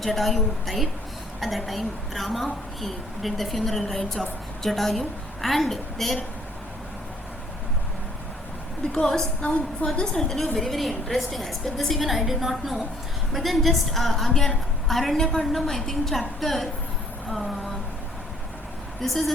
died. At that time Rama, he did the funeral rites of Jatayu, and there, because now for this I'll tell you a very very interesting aspect. This even I did not know, but then just again Aranyakandam, I think chapter this is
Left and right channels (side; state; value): both; normal; correlation 0.62